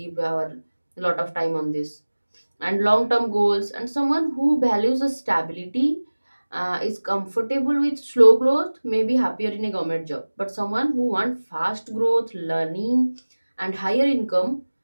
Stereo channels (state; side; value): inverted; both; correlation -1.00